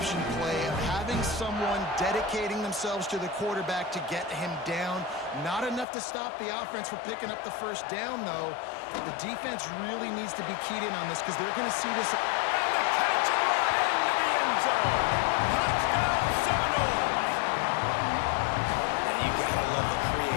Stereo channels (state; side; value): drops out; right; at 5.9 s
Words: play of having someone dedicating themselves to the quarterback to get him down. Not enough to stop the offense from picking up the first down, though. The defense really needs to be keyed in on this because they're going to see this. And the catch and run into the end zone. Touchdown, Seminoles. And you got to love the